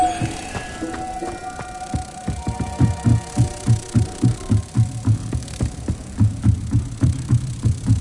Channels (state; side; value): identical; both; correlation 1.00